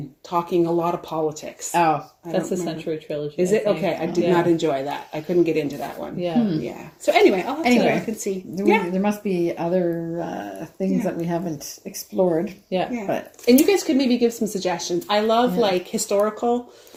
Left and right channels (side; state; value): both; identical; correlation 1.00